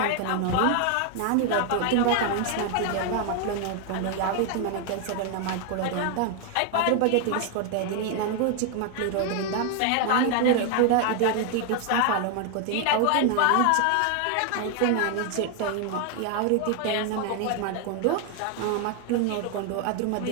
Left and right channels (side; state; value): both; different; correlation 0.01